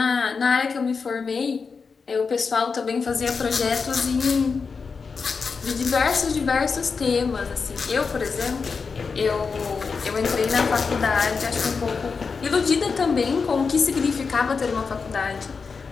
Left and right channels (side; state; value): right; quieter; 5.1 dB